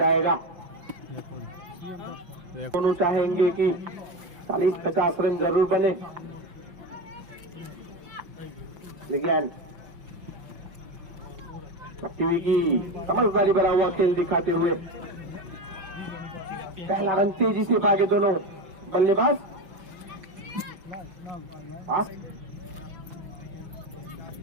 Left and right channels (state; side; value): late; left; 5.8 ms